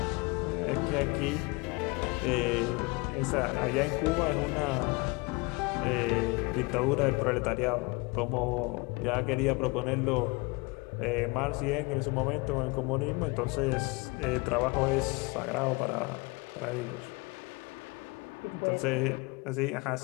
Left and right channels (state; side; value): quieter; right; 27.0 dB